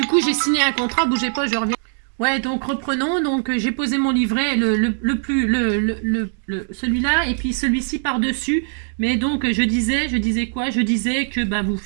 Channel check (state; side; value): silent; left; digital silence